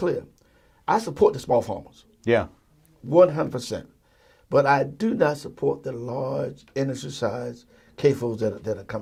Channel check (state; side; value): identical; both; correlation 1.00